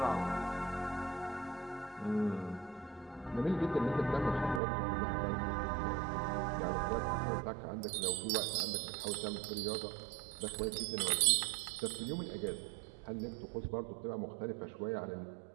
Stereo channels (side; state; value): left; drops out; at 4.6 s